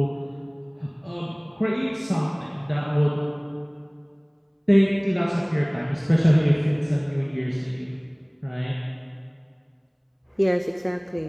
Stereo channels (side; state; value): both; identical; correlation 1.00